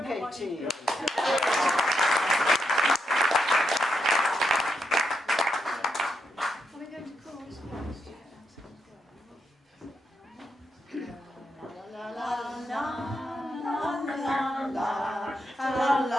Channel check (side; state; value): both; normal; correlation 0.83